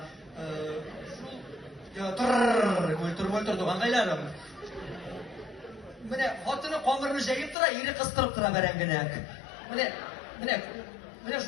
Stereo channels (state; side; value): drops out; right; at 7.6 s